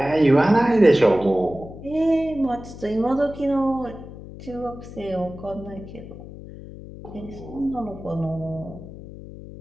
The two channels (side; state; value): left; noise; hum, 14 dB below the sound